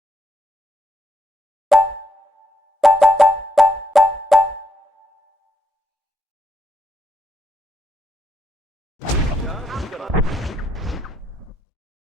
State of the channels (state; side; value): normal; both; correlation 0.79